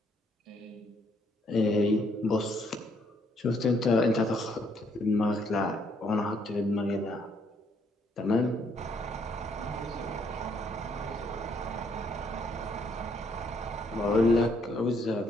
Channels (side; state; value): both; normal; correlation 0.70